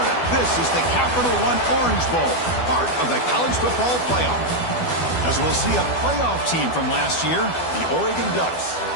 This is the Capital One Orange Bowl, part of the college football playoff. As we'll see a playoff team from last year, the Oregon Ducks,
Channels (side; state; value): right; late; 12 ms